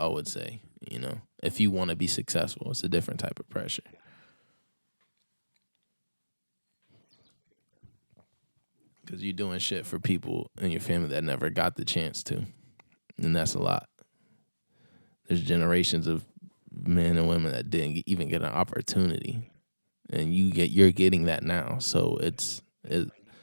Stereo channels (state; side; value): inverted; both; correlation -1.00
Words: would say, you know. If you want to be successful, it's a different type of pressure. Because you're doing shit for people in your family that never got the chance to. And that's a lot. There's generations of men and women that didn't even get an opportunity. And you're getting that now. So